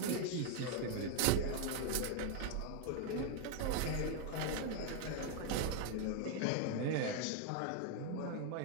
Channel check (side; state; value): both; different; correlation 0.00